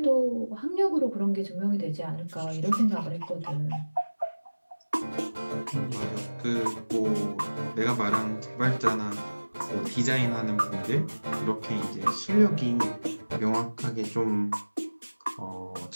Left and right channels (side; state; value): both; inverted; correlation -1.00